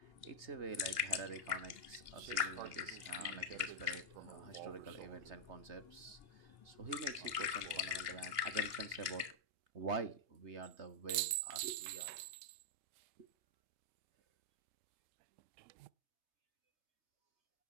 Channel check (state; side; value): late; left; 2.8 ms